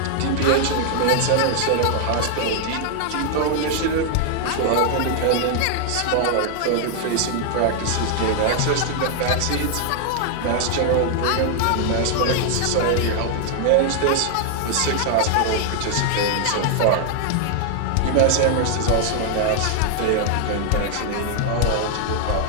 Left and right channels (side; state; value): both; different; correlation 0.00